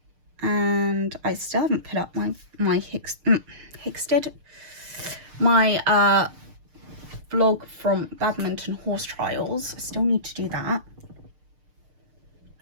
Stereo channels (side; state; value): left; late; 6.6 ms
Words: And I still haven't put up my Hicksted, my vlog from badminton horse trials. I still need to do that.